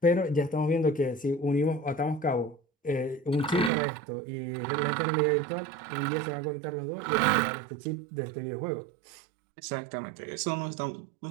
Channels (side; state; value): left; drops out; at 3.7 s